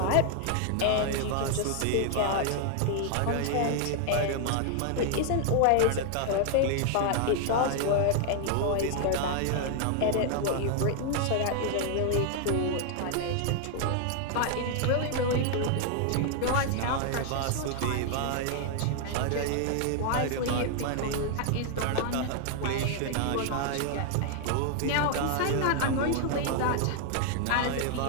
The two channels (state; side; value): different; both; correlation 0.00